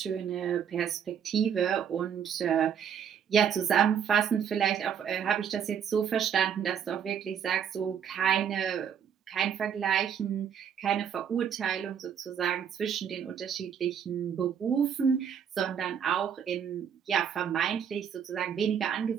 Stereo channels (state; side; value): quieter; left; 8.1 dB